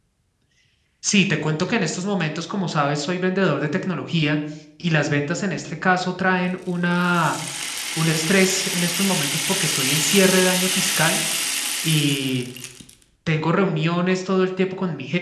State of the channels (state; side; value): identical; both; correlation 1.00